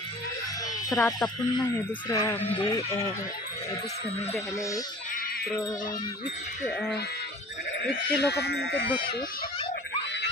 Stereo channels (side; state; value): both; normal; correlation 0.44